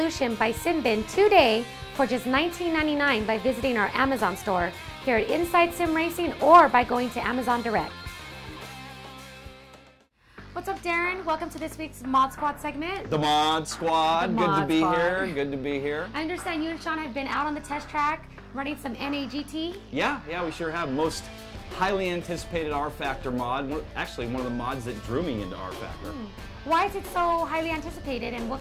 by Simbin today for just $19.99 by visiting our Amazon store here at Inside Sim Racing or by going to Amazon Direct. What's up, Darren? Welcome to this week's Mod Squad segment. The Mod Squad. Good to be here. Good to be here. I understand you and Sean have been out on the test track running some NAGT. Yeah, we sure have. Most highly anticipated R Factor mod. Actually, one of the mods that drew me into R Factor. Why is it so highly anticipated, and what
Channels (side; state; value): both; identical; correlation 1.00